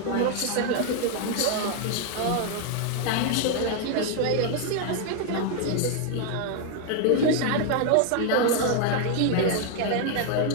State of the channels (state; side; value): different; both; correlation 0.00